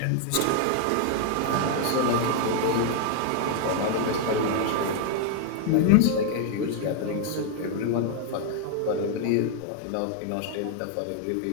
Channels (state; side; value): different; both; correlation 0.00